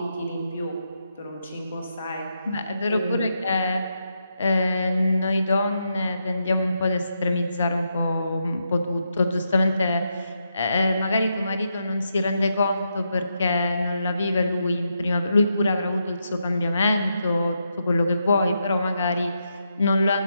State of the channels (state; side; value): inverted; both; correlation -0.83